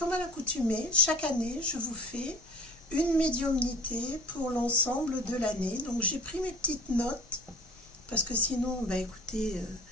à l'accoutumée, chaque année, je vous fais une médiumnité pour l'ensemble de l'année. Donc, j'ai pris mes petites notes, parce que sinon, écoutez,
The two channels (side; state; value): both; normal; correlation 0.44